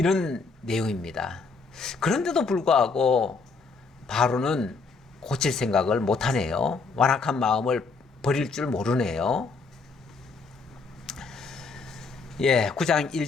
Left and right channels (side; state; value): right; quieter; 4.4 dB